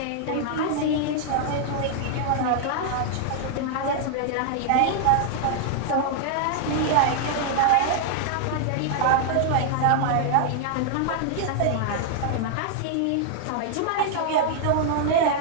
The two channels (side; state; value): both; different; correlation 0.00